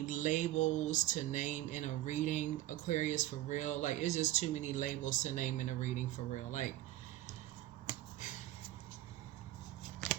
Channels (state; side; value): quieter; left; 15.2 dB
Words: labels to name in a reading, Aquarius, for real. Like, it's just too many labels to name in a reading, for real. Like,